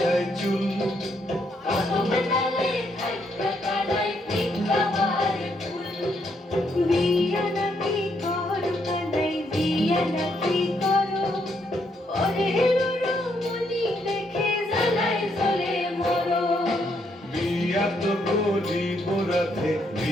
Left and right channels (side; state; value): both; normal; correlation 0.74